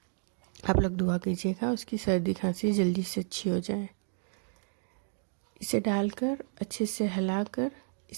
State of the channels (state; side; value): silent; left; 57 dB below the other